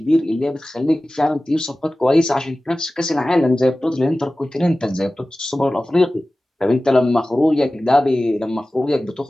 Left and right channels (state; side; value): normal; both; correlation 0.96